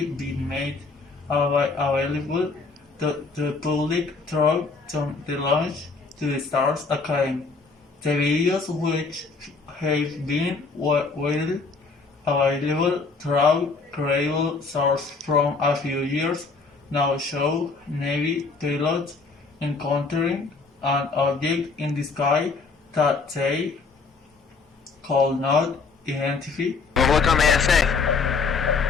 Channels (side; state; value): right; quieter; 4.4 dB